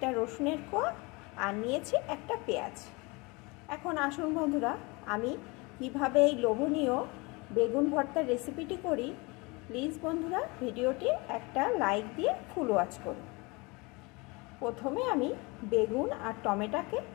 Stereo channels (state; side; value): quieter; right; 26.6 dB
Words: রসুনের কোয়া আর নিয়েছি একটা পেঁয়াজ। এখন আসুন বন্ধুরা, আমি কিভাবে এই লোভনীয় বেগুন ভর্তার রেসিপিটি করি। প্লিজ বন্ধুরা ভিডিওটি একটা লাইক দিয়ে ফুল ওয়াচ করুন। প্রথমে আমি বেগুন আর টমেটোকে